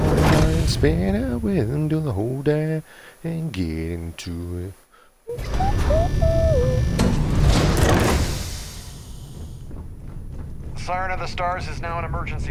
spin out with him, do the whole day and get into it. Siren of the Stars is now in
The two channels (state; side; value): identical; both; correlation 1.00